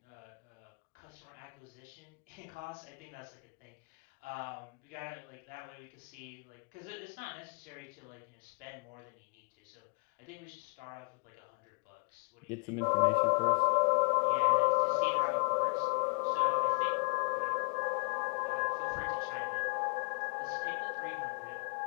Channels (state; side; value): quieter; right; 36.7 dB